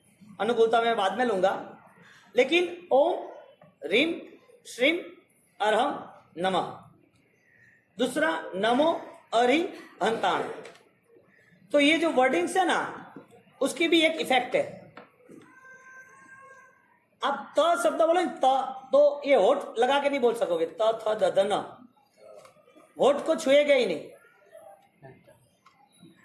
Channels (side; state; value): both; identical; correlation 1.00